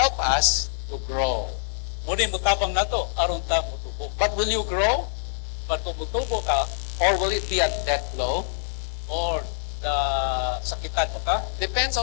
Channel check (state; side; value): silent; right; 62 dB below the other